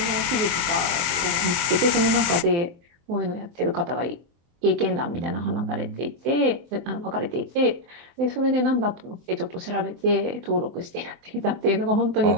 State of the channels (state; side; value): late; left; 24 ms